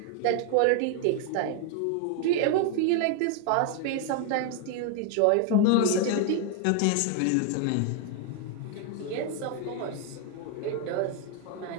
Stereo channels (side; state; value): both; different; correlation 0.01